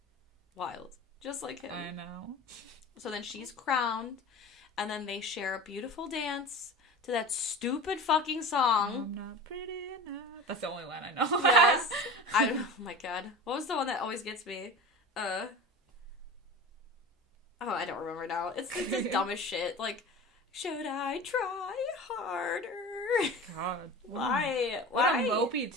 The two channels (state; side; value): normal; both; correlation 0.34